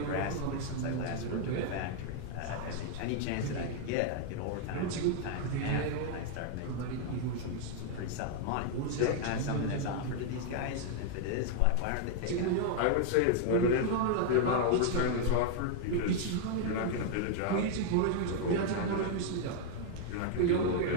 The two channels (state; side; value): different; both; correlation 0.00